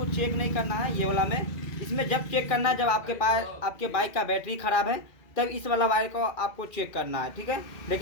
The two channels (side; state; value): right; late; 2.4 ms